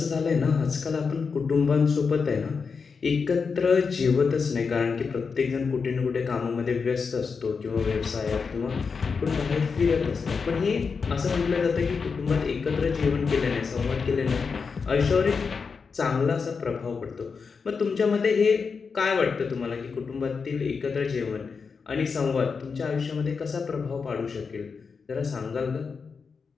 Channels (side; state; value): right; quieter; 5.3 dB